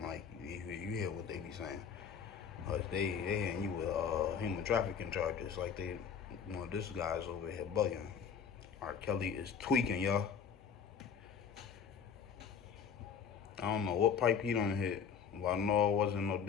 like, you hear what they be saying. They hitting you with human trafficking charges. Like, this guy's over here bugging. R. Kelly is tweaking, y'all. I don't know what pipe he done hit. Well, I know it wasn't no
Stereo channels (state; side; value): quieter; right; 7.0 dB